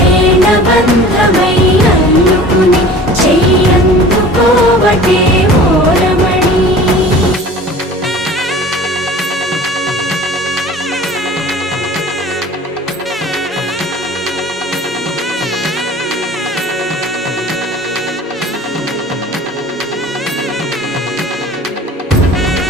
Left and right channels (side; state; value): both; normal; correlation 0.43